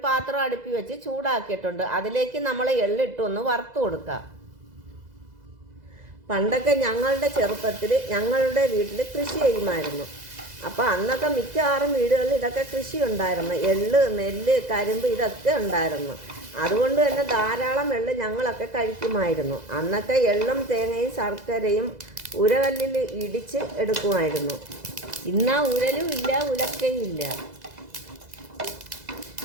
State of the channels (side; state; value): left; late; 2.0 ms